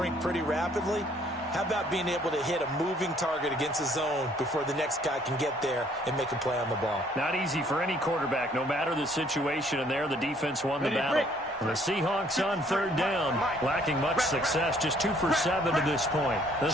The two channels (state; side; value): normal; both; correlation 0.62